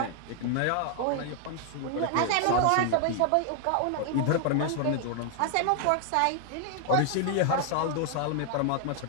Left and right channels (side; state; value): both; different; correlation 0.00